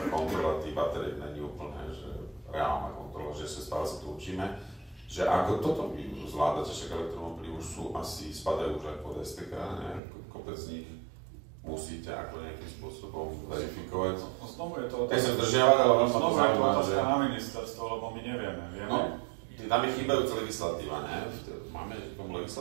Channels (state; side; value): drops out; left; at 10.0 s